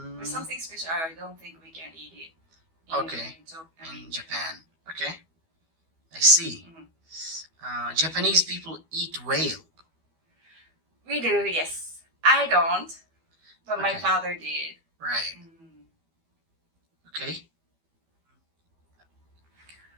It's something special. I don't think we can eat it. In Japan. Okay. I see. Japanese people eat whale. We do, yes. I don't, but my Okay. father did. Right. Okay.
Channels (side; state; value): left; late; 12 ms